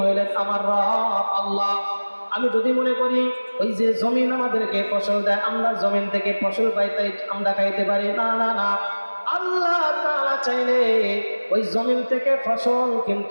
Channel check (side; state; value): both; inverted; correlation -1.00